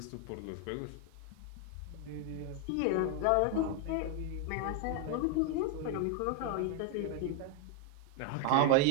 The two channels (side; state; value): both; different; correlation 0.00